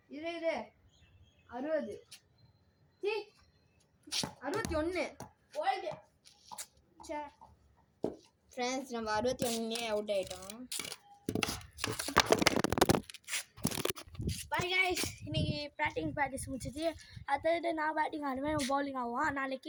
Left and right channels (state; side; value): identical; both; correlation 1.00